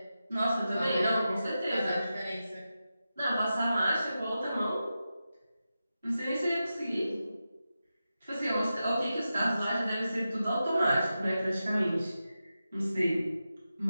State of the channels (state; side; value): inverted; both; correlation -0.91